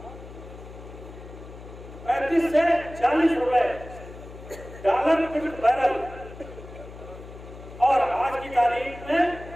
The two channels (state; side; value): noise; left; hum, 15 dB below the sound